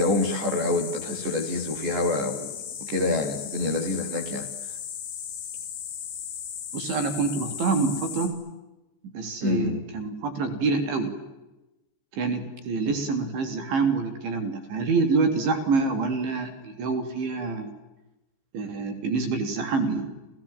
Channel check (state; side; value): late; left; 14 ms